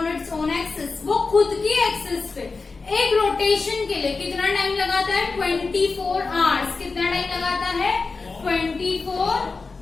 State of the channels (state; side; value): quieter; right; 4.2 dB